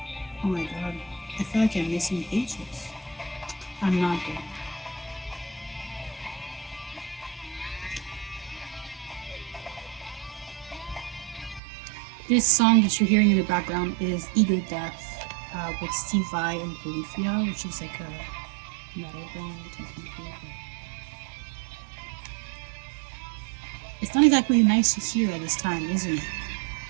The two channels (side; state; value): left; drops out; at 11.6 s